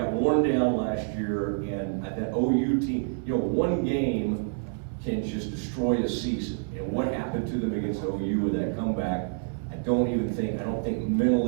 worn down last year, and that OU team, one game can just destroy a season. And what happened to them against OU with that comeback, I don't think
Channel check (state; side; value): silent; left; digital silence